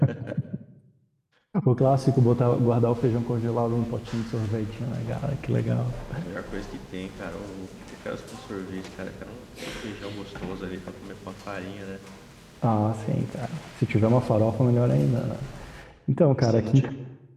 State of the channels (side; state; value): both; identical; correlation 1.00